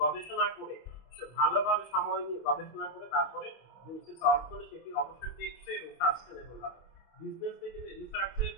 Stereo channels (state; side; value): late; right; 25 ms